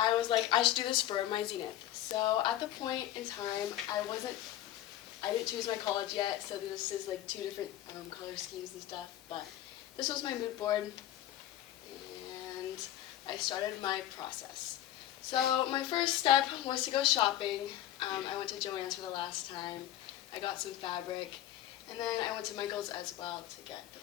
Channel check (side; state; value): right; quieter; 13.1 dB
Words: was like, I should do this for my Zenith. So at the point in time I didn't choose my college yet, so this is like two different color schemes and stuff, but this was my mood board and I started my process. So my first step was to go shopping. I went to Joann's for the last time. I got some fabric, and then I went to Michael's as well to get the